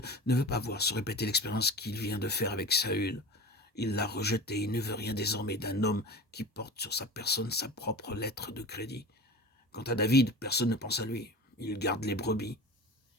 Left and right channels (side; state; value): both; normal; correlation 0.33